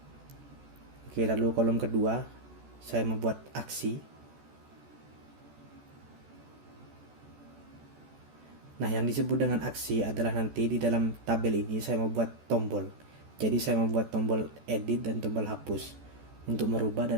Oke, lalu kolom kedua saya membuat aksi. Nah, yang disebut dengan aksi adalah nanti di dalam tabel ini saya membuat tombol. Jadi saya membuat tombol edit dan tombol hapus untuk merubah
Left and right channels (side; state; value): left; late; 14 ms